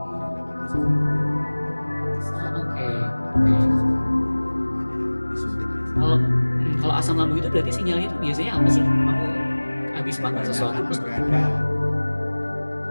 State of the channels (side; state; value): both; inverted; correlation -1.00